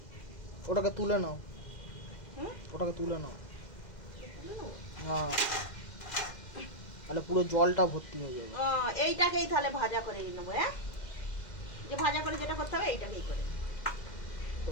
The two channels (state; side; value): late; right; 2.1 ms